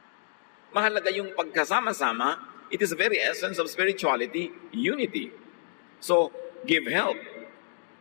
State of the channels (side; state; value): right; silent; digital silence